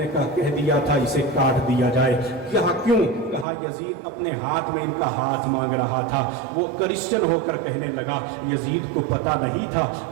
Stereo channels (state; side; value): drops out; left; at 3.5 s